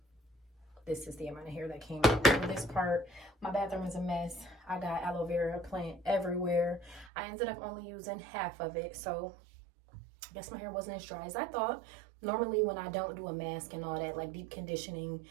this is the amount of hair that came out. For this part, my bathroom is a mess. I got aloe vera plant everywhere. I ended up only using half of it. So I guess my hair wasn't as dry as I thought. Normally when I don't do a mask and all that, like deep conditioning,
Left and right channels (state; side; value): drops out; left; at 7.1 s